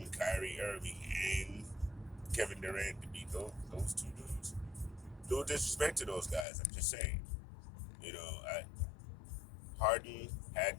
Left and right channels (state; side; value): drops out; right; at 6.5 s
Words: Kyrie Irving, and Kevin Durant to beat those two dudes? No disrespect to those guys. I'm just saying. Harden had